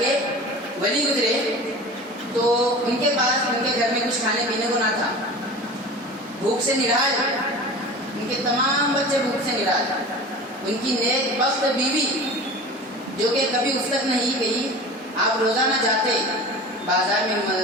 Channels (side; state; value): both; normal; correlation 0.36